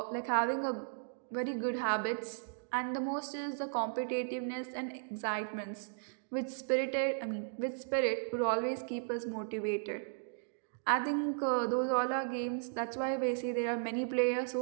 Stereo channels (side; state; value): left; silent; digital silence